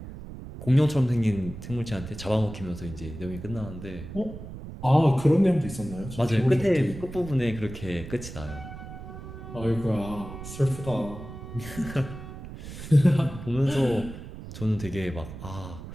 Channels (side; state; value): right; noise; rumble, 12 dB below the sound